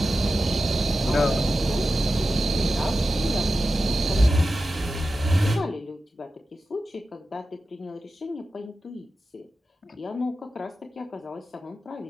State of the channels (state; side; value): normal; both; correlation 0.92